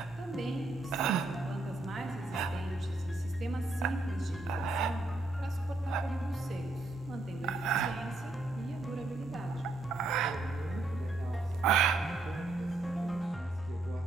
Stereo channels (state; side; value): quieter; left; 3.1 dB